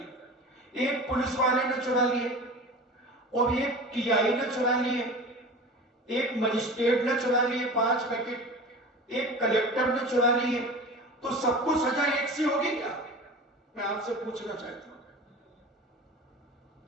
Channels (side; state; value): both; normal; correlation 0.35